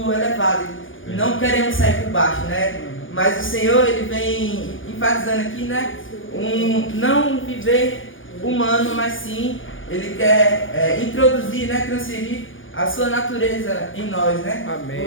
elevado, não queremos sair por baixo, né? Mas o Senhor, ele vem enfatizando aqui, né? Não viver humano, mas sim, ele quer introduzir, né? Transferir a sua natureza em nós, né? Amém.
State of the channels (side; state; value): right; late; 0.57 ms